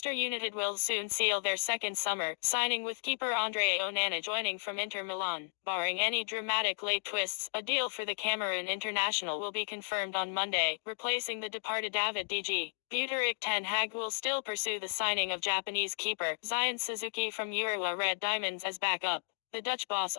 United will soon seal their second summer signing, with keeper Andre Onana joining from Inter Milan. Barring any dramatic late twists, a deal for the Cameroon international will be confirmed on Monday, replacing the departed David DG. Buteric Ten Hag will still pursue the signing of Japanese keeper Zion Suzuki from Urawa Red Diamonds as backup. The Dutch boss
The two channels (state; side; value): silent; right; digital silence